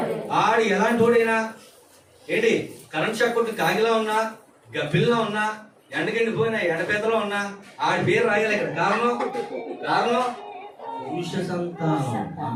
ఆడు ఎలాంటి వాడైనా ఏంటి, కరెంట్ షాక్ కొట్టి కాగిలా ఉన్నా, గబ్బిల్లా ఉన్నా, ఎండకెండిపోయినా, ఎండపేతలో ఉన్నా ఆడి పేరు రాయాలి ఇక్కడ. కారణం పురుష సంతానం.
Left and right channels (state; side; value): identical; both; correlation 1.00